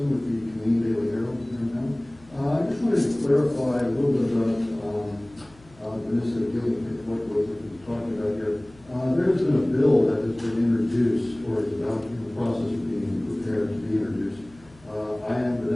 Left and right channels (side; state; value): left; noise; hum, 26 dB below the sound